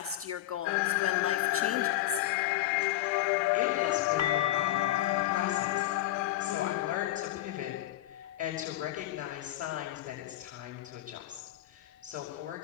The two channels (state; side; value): quieter; right; 14.8 dB